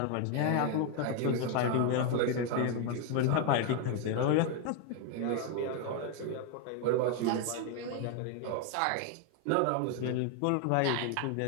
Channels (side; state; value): both; different; correlation 0.01